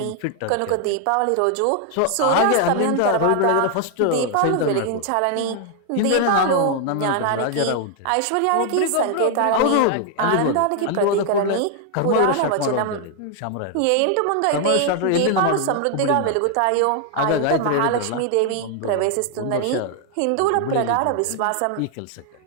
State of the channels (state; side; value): different; both; correlation 0.00